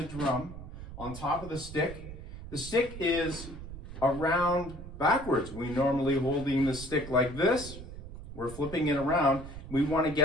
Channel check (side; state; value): right; noise; rumble, 12 dB below the sound